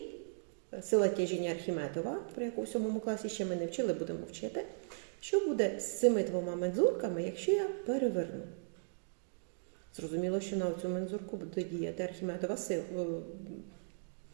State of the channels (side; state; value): left; silent; digital silence